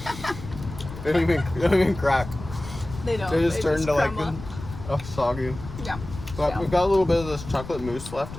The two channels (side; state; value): left; noise; rumble, 12 dB below the sound